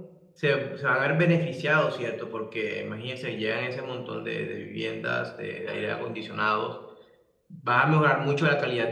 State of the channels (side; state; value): both; identical; correlation 1.00